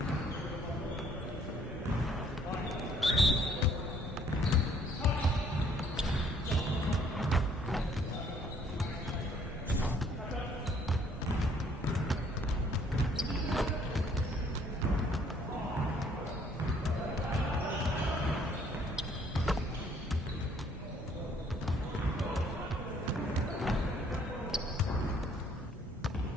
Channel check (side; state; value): both; normal; correlation 0.62